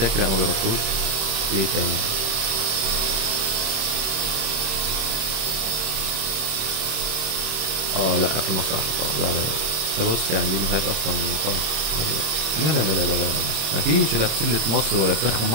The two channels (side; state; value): left; late; 26 ms